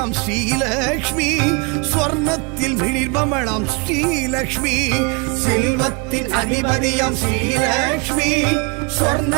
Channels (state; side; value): quieter; left; 31.0 dB